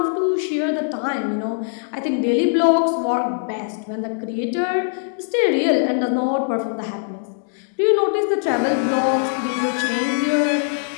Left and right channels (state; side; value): silent; right; digital silence